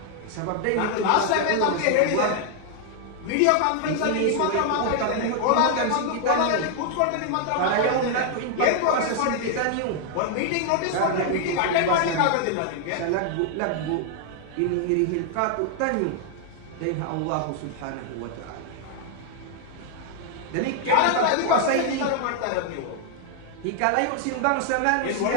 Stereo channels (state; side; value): different; both; correlation 0.00